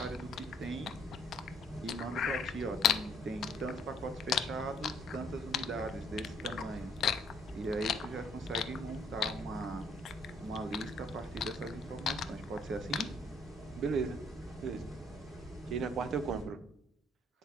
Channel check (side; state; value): both; normal; correlation 0.66